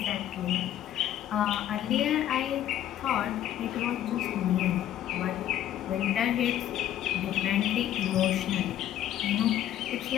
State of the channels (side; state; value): right; quieter; 11.7 dB